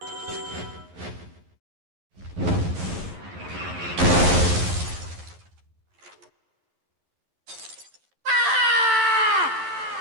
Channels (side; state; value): left; late; 11 ms